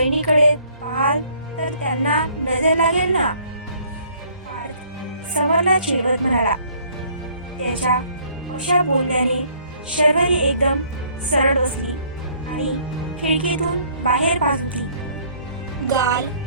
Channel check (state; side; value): inverted; both; correlation -0.60